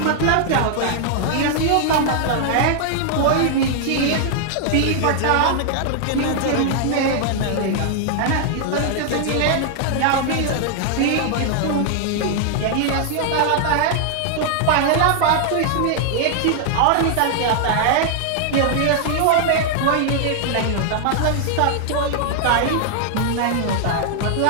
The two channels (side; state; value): both; different; correlation 0.00